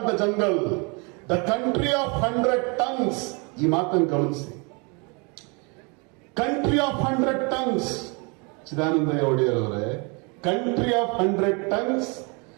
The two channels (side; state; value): left; quieter; 31.9 dB